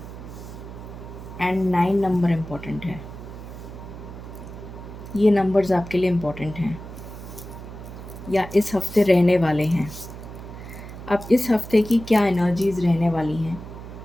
एंड 9 नंबर इम्पोर्टेंट है। ये नंबर्स आपके लिए इम्पोर्टेंट हैं या इस हफ्ते रहने वाले हैं। अब इस हफ्ते की क्या एनर्जीज़ रहने वाली हैं,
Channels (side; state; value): right; noise; hum, 12 dB below the sound